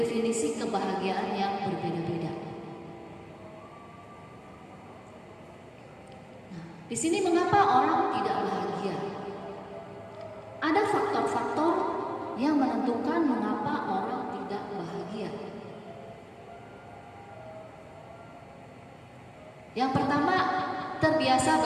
kebahagiaan yang berbeda-beda. Nah, di sini mengapa orang tidak bahagia? Ada faktor-faktor yang menentukan mengapa orang tidak bahagia. Yang pertama, terbiasa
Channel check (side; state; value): both; identical; correlation 1.00